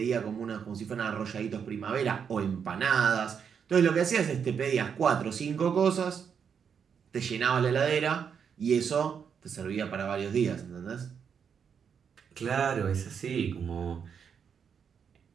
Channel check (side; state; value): left; quieter; 7.1 dB